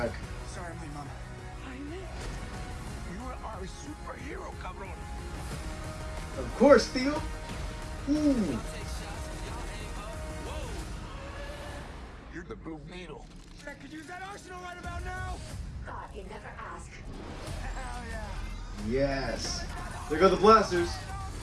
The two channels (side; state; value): both; identical; correlation 1.00